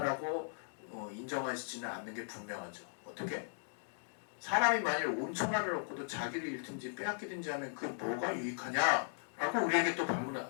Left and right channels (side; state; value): right; silent; digital silence